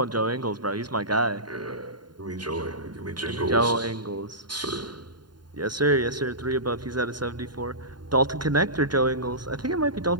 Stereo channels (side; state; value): left; late; 0.71 ms